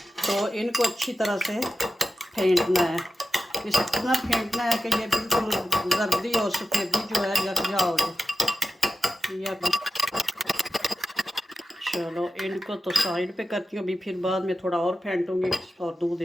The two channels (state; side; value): normal; both; correlation 0.92